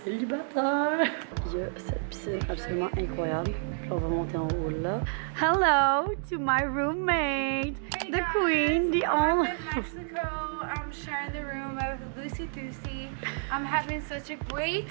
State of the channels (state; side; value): silent; left; digital silence